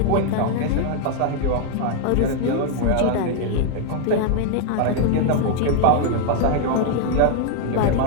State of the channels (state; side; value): different; both; correlation 0.00